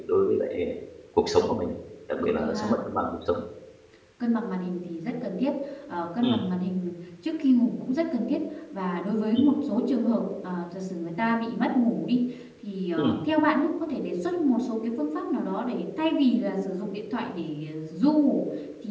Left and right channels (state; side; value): identical; both; correlation 1.00